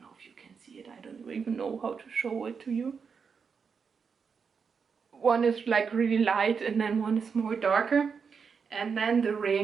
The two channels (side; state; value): left; quieter; 5.9 dB